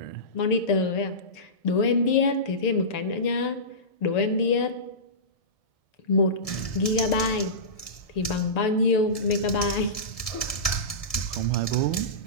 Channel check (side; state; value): right; late; 1.7 ms